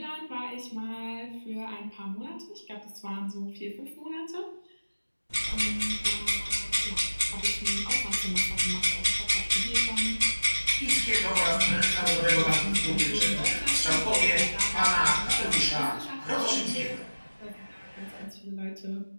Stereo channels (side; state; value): both; inverted; correlation -1.00